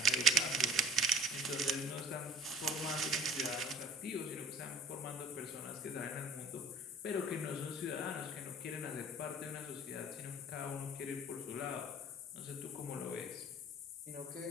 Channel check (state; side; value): normal; both; correlation 0.45